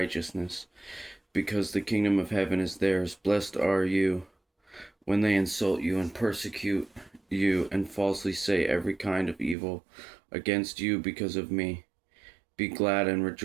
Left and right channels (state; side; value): drops out; left; at 9.6 s